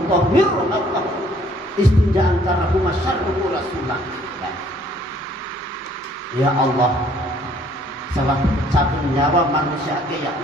Allah istinja'an karahu masyarruhu rasulullah. Ya Allah, salah cabut nyawa manusia ke ya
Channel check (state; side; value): normal; both; correlation 0.60